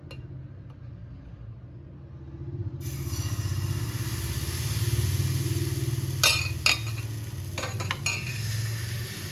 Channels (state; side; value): identical; both; correlation 1.00